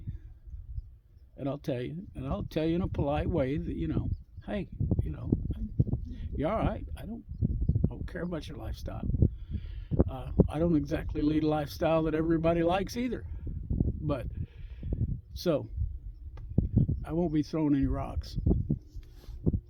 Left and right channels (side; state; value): both; identical; correlation 1.00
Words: And I'll tell you. And I'll tell you in a polite way that, hey, you're all right. I don't care about your lifestyle. I don't exactly lead a lifestyle that everybody likes either. But, so, I won't be throwing any rocks.